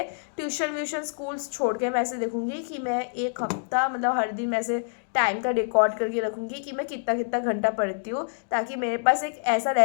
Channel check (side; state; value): right; silent; digital silence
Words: ट्यूशन स्कूल्स छोड़ के मैं ऐसे देखूंगी कि मैं एक हफ्ता मतलब हर दिन मैं ऐसे टाइम का रिकॉर्ड करके रखूंगी कि मैं कितना कितना घंटा पढ़ती हूँ, ताकि मेरे पास एक ऐसा